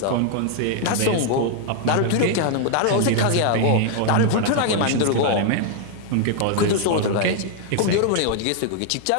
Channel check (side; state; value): both; different; correlation 0.00